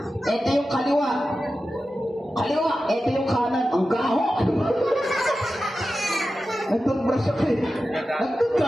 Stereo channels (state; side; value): normal; both; correlation 0.93